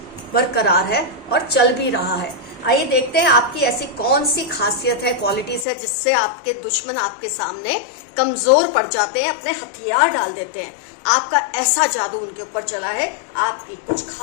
बरकरार है और चल भी रहा है। आइए देखते हैं आपकी ऐसी कौन सी खासियत है, क्वालिटीज है जिससे आपके दुश्मन आपके सामने कमजोर पड़ जाते हैं, अपने हथियार डाल देते हैं। आपका ऐसा जादू उनके ऊपर चला है आपकी कुछ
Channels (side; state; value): right; drops out; at 5.7 s